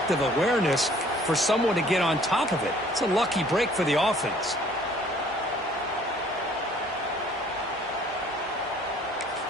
awareness for someone to get on top of it. It's a lucky break for the offense.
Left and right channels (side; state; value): both; normal; correlation 0.57